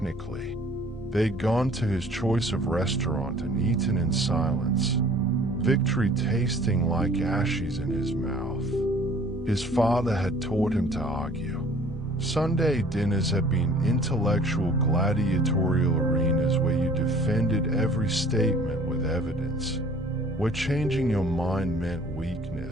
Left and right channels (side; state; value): both; normal; correlation 0.52